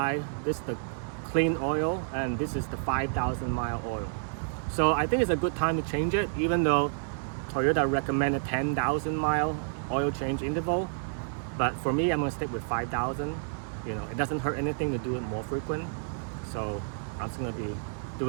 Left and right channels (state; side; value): silent; left; digital silence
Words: this is the clean oil and this is the 5,000 mile oil. So I think it's a good time to change it, even though Toyota recommended 10,000 mile oil change interval. But for me, I'm gonna stick with 5,000. You know, it doesn't hurt anything to do it more frequent. So I'm just gonna be